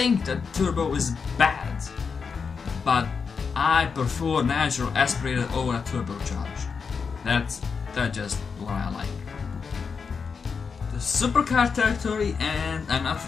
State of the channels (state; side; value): quieter; right; 5.6 dB